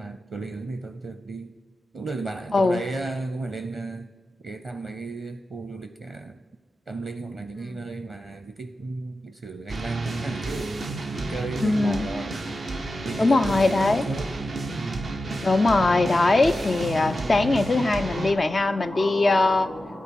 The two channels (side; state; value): both; normal; correlation 0.92